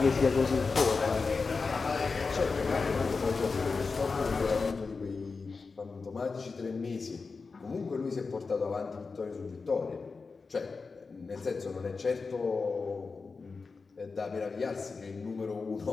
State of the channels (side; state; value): right; quieter; 4.5 dB